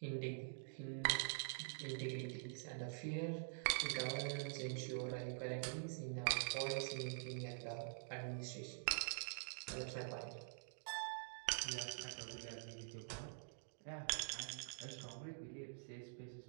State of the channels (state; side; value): silent; left; digital silence